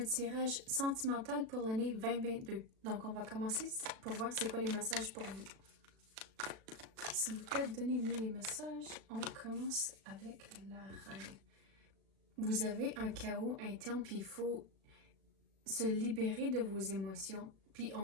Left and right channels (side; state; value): left; late; 36 ms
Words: tirage sentimental pour l'année 2022. Donc, on va commencer pour voir c'est quoi les messages pour vous. S'il vous plaît, donnez-nous les messages. On commence avec la reine. Vous avez un chaos interne, puis il faut se libérer de vos émotions. Puis